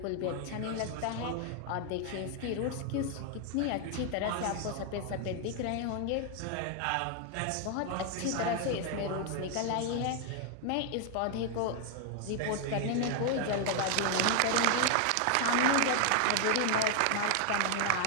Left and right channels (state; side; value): different; both; correlation 0.00